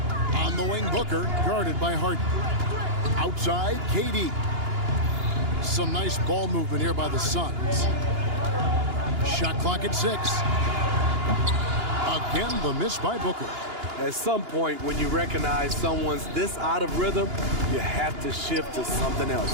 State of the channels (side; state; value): left; late; 2.9 ms